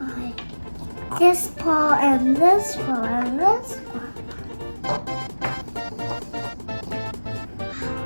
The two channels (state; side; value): inverted; both; correlation -1.00